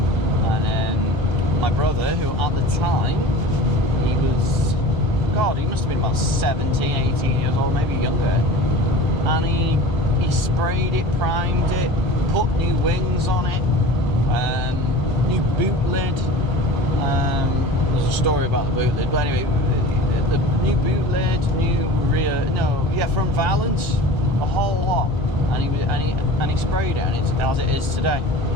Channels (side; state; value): both; normal; correlation 0.38